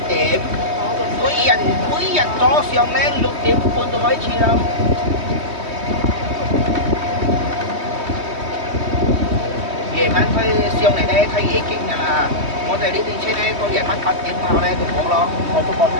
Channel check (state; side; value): late; left; 3.2 ms